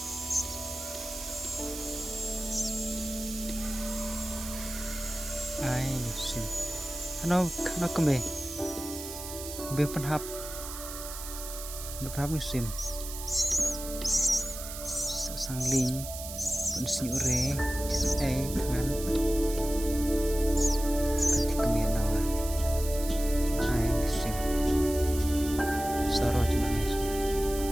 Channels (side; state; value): right; noise; hiss, 9 dB below the sound